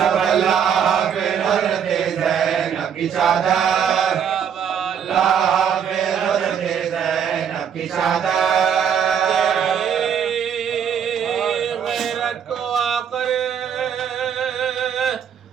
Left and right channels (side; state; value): left; quieter; 8.0 dB